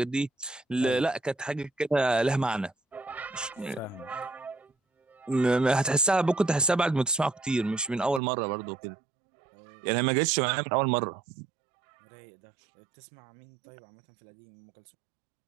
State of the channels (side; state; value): left; drops out; at 8.2 s